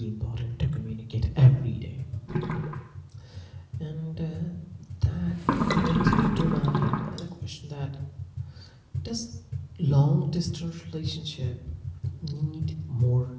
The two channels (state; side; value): identical; both; correlation 1.00